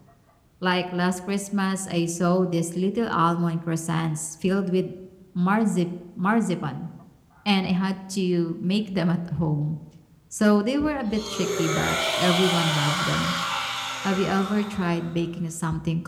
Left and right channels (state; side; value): identical; both; correlation 1.00